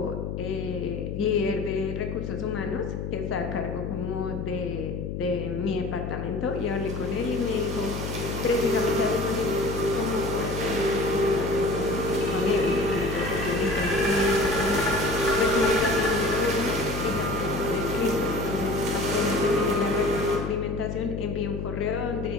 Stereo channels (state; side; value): noise; left; hum, 4 dB below the sound